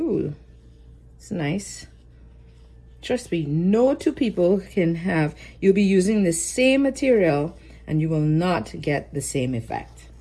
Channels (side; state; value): both; identical; correlation 1.00